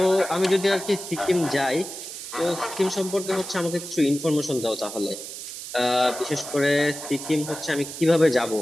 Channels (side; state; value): right; noise; hiss, 10 dB below the sound